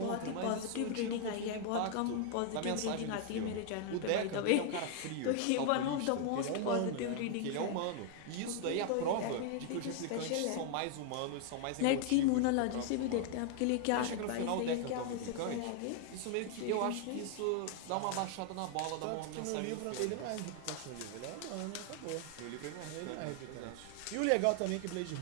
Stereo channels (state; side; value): different; both; correlation 0.00